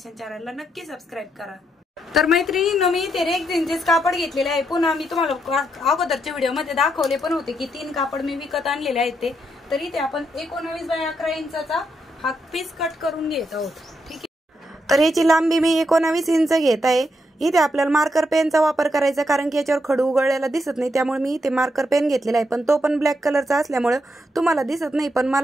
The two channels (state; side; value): normal; both; correlation 0.80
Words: चॅनलला नक्की सबस्क्राईब करा। तर मैत्रिणींनो, मी ते रेक्झिनचेच कापड घेतलेले आहे। पुन्हा मी तुम्हाला अगोदरच्या व्हिडिओ मध्ये दाखवले पण होते की 3 कापड मी विकत आणलेले आहेत ते। तर इथे आपण 19x11 इंचाचा हा पीस कट करून घेत आहोत, ठीक आहे। तर याची लांबी मी 19 इंच घेत आहे। इथे आपल्याला मार्कर पेनचा वापर करायचा, कारण की याच्यावर खडू उघडलेला दिसत नाही, त्यामुळे मी इथे मार्कर पेन घेतलेला आहे, पण तो पण ब्लॅक कलरचा असल्यामुळे तुम्हाला दिसत नाही, पण